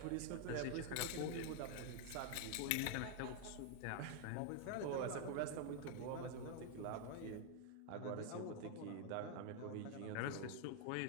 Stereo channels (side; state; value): both; different; correlation 0.00